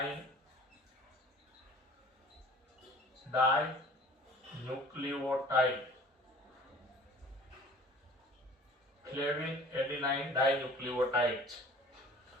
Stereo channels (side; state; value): both; normal; correlation 0.46